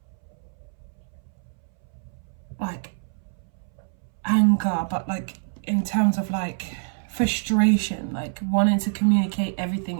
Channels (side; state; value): left; silent; 61 dB below the other